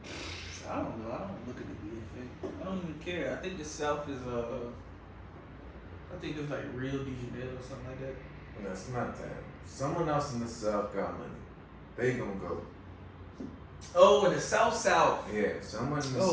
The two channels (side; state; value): both; identical; correlation 1.00